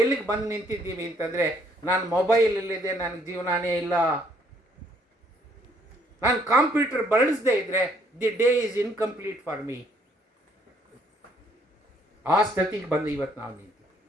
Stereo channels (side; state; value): both; normal; correlation 0.66